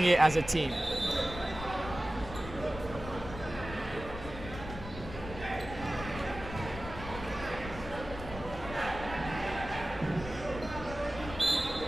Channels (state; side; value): noise; left; rumble, 11 dB below the sound